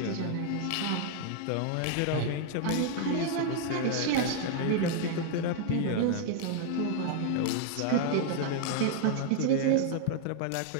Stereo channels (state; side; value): different; both; correlation 0.00